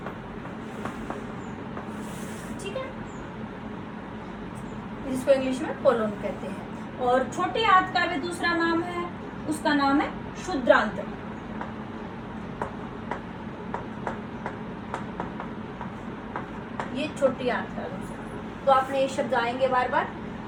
ठीक है, जिसको इंग्लिश में कोलोन कहते हैं। और छोटी आंत का भी दूसरा नाम है, उसका नाम है क्षुद्रांत्र। ये छोटी आंत का दूसरा, तो आपने ये शब्द आएंगे बार बार,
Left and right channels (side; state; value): both; identical; correlation 1.00